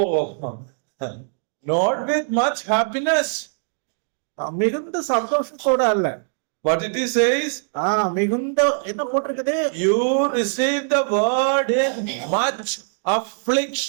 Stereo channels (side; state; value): left; silent; digital silence